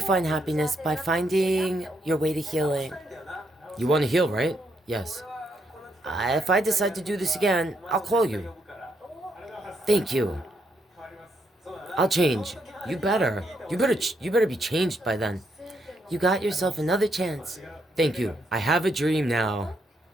find happiness by finding your way to healing. You want to heal, right? Yes. If I decide to do this again, I'll call you. Thank you. I'll change. You better be changed by then. You got yourself another chance. Thank you. I have a dream now.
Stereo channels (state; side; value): normal; both; correlation 0.77